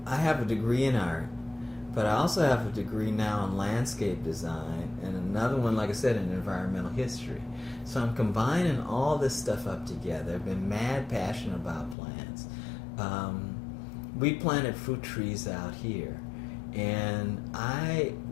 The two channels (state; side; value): drops out; right; at 12.0 s